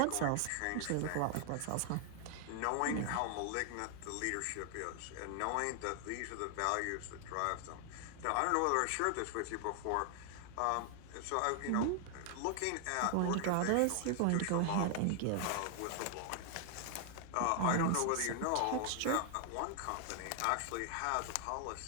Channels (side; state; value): both; different; correlation 0.00